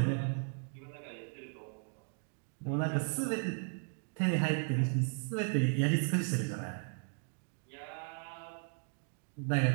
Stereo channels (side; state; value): left; silent; 54 dB below the other